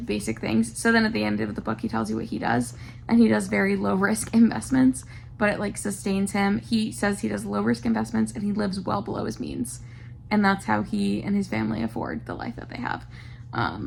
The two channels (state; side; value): identical; both; correlation 1.00